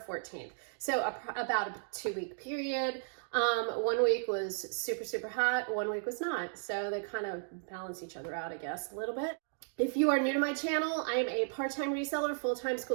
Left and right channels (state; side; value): silent; left; digital silence